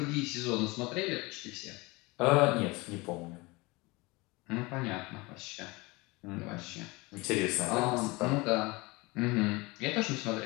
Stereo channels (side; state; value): right; quieter; 24.3 dB